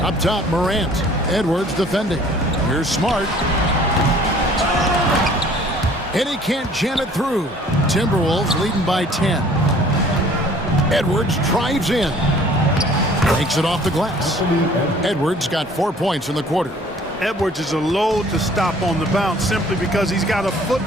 Up top, Morant. Edwards defending. Here's Smart. And he can't jam it through. Timberwolves leading by 10. Edwards drives in. Takes it off the glass. Edwards got 4 points in the quarter. Edwards is a load to stop on the bounce simply because he's got a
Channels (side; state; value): both; normal; correlation 0.53